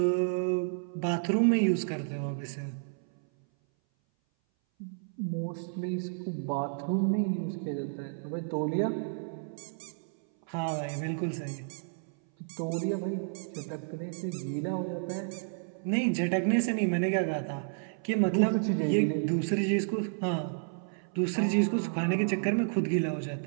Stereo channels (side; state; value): left; silent; 57 dB below the other